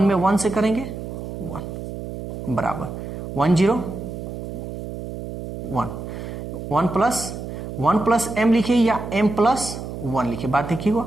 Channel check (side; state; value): right; noise; hum, 8 dB below the sound